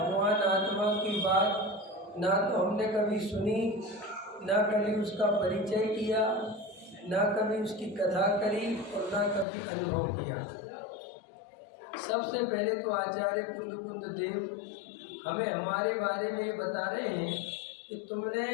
आत्मा की बात ना तो हमने कभी सुनी, ना कभी उसका परिचय किया, ना कभी उसकी कथा करी और ना कभी अनुभव किया। सबसे पहले तो आचार्य कुंद देव हमें हमारे बारे में ये बता रहे हैं कि तुमने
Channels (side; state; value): right; drops out; at 9.5 s